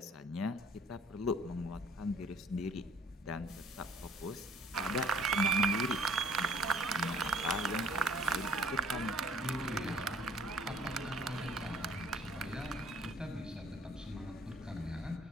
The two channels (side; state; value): both; normal; correlation 0.58